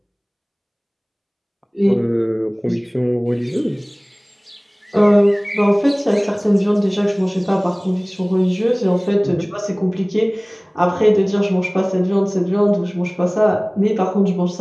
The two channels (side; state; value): both; identical; correlation 1.00